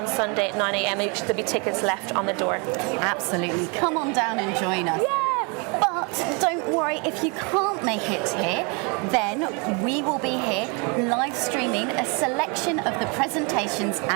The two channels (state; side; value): quieter; left; 32.4 dB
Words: Sunday at 9 a.m. There'll be tickets left on the door. Absolutely. Come on down and join us. Yeah! But But don't worry, if you can't make it here, then we will be here live streaming a selection of the presentations